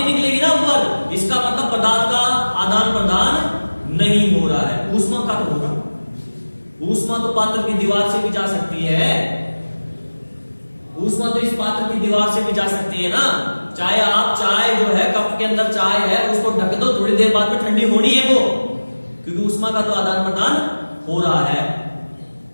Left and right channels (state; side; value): inverted; both; correlation -1.00